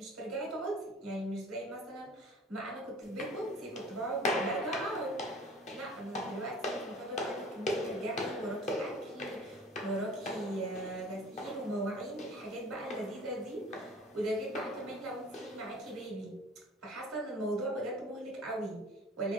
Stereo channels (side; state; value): both; normal; correlation 0.45